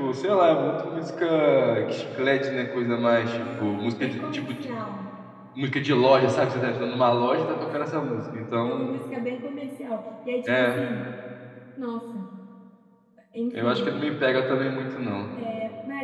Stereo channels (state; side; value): identical; both; correlation 1.00